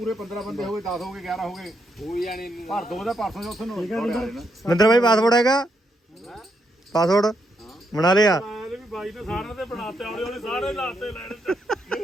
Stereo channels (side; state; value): both; normal; correlation 0.79